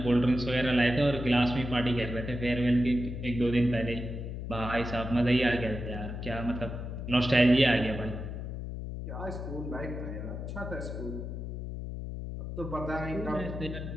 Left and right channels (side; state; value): left; noise; hum, 6 dB below the sound